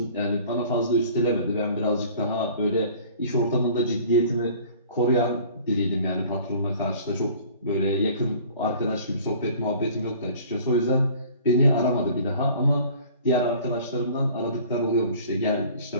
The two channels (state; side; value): inverted; both; correlation -0.48